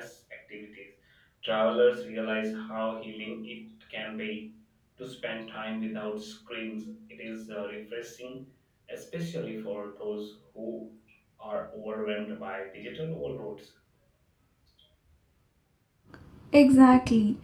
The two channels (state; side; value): identical; both; correlation 1.00